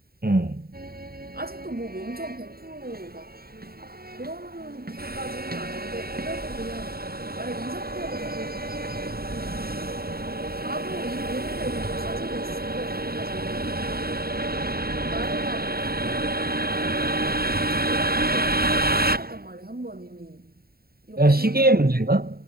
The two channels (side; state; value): left; late; 0.44 ms